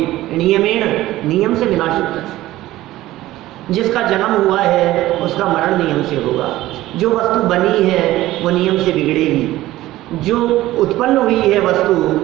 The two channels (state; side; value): quieter; left; 16.1 dB